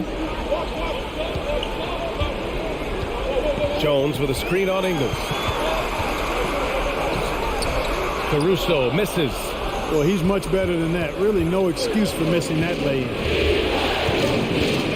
Jones with a screen on Ingles. Caruso misses. Well, he's much better than that. Really no excuse for missing that lay-in.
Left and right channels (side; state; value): both; identical; correlation 1.00